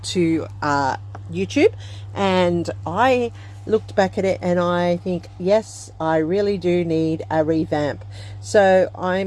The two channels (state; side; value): identical; both; correlation 1.00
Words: to YouTube, and I looked back at it and I think, yes, I really do need a revamp. So